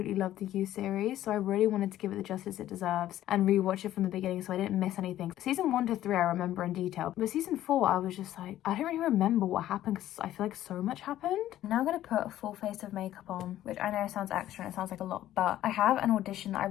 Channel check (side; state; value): right; quieter; 13.1 dB